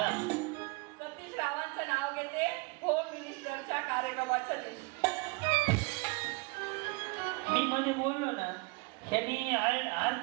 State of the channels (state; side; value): quieter; left; 29.1 dB